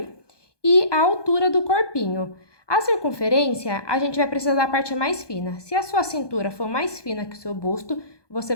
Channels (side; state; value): right; late; 1.2 ms